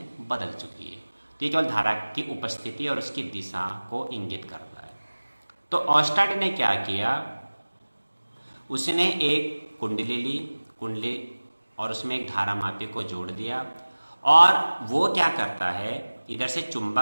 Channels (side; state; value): both; inverted; correlation -1.00